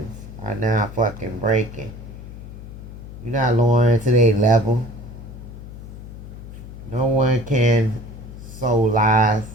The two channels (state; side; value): noise; left; hum, 13 dB below the sound